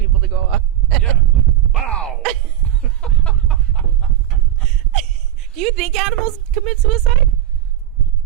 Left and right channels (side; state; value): left; quieter; 11.9 dB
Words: to go up. Yeah, like, wow! Do you think animals commit suicide?